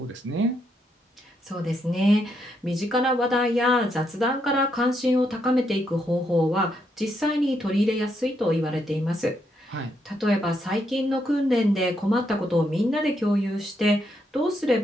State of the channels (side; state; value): both; normal; correlation 0.78